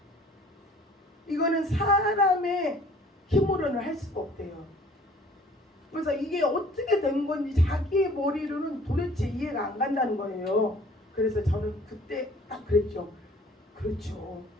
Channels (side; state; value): both; normal; correlation 0.53